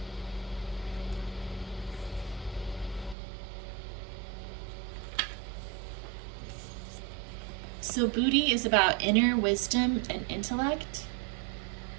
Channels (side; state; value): left; drops out; at 3.2 s